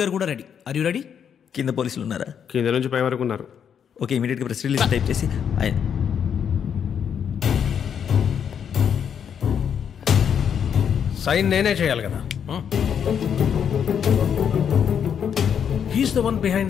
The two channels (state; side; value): quieter; right; 8.0 dB